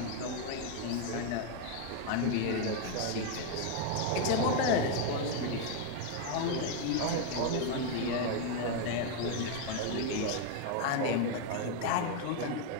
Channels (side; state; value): both; different; correlation 0.01